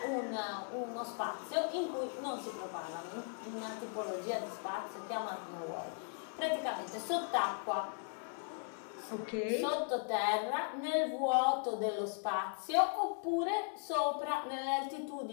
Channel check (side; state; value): right; silent; 53 dB below the other